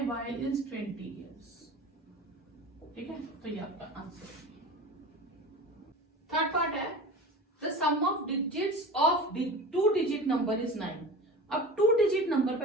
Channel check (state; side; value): normal; both; correlation 0.34